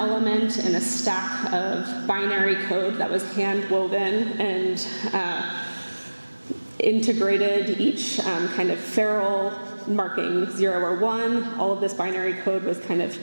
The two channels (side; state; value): both; inverted; correlation -1.00